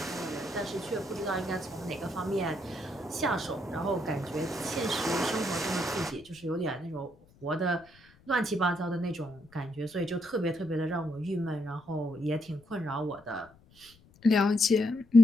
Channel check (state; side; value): noise; left; rumble, 28 dB below the sound